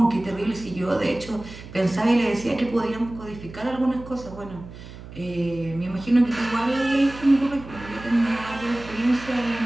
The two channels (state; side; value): noise; right; hum, 15 dB below the sound